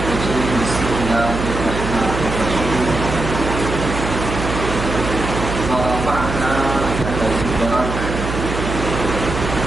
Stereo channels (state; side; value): noise; right; hum, 4 dB below the sound